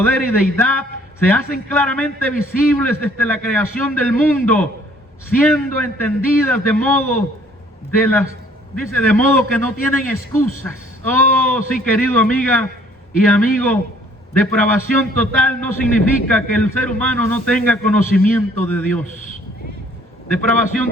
y deidad, se hacen claramente visibles desde la creación del mundo, siendo entendidas de modo que no tienen excusas. Oh, sí, querido amiga y amigo, depravación total no significa que el ser humano no tenga conocimiento de Dios.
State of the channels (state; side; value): normal; both; correlation 0.58